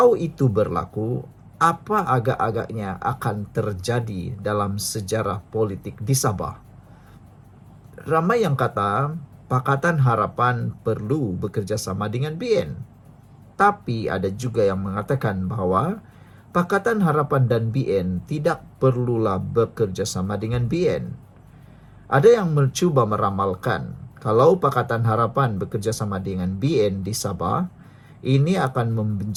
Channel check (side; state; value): both; identical; correlation 1.00